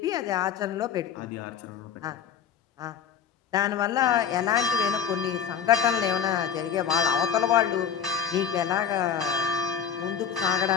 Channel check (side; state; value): right; quieter; 8.0 dB